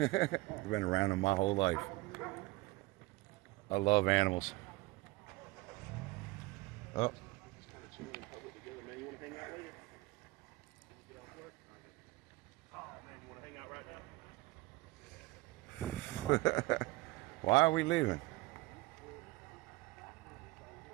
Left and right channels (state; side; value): quieter; left; 20.7 dB